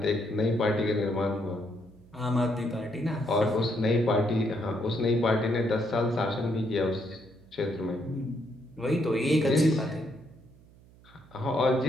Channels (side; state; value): right; noise; hum, 25 dB below the sound